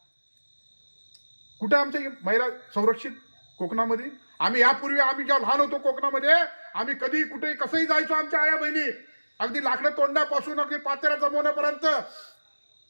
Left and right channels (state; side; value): inverted; both; correlation -1.00